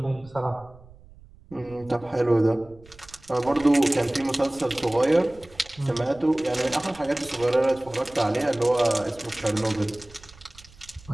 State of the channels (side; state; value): right; noise; rumble, 23 dB below the sound